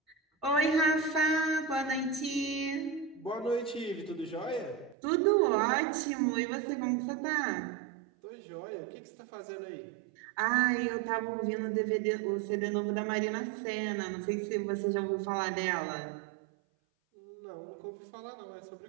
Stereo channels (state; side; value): drops out; left; at 5.0 s